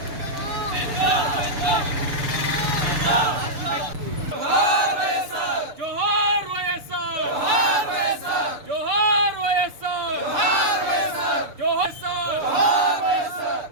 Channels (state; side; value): late; left; 6.8 ms